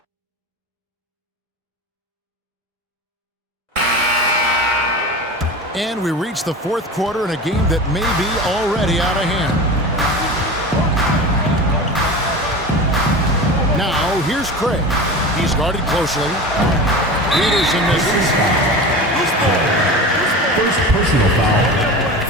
And we reach the fourth quarter in a game that may be already out of hand. Now, here's Craig. He's guarded closely. Peterson misses. First personal foul.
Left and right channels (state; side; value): normal; both; correlation 0.31